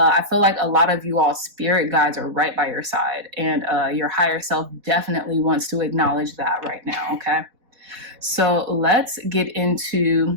feel like a lot of you all spirit guides are right by your side, and your higher self definitely wants to acknowledge that right now. Okay. So let's get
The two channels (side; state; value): left; late; 4.0 ms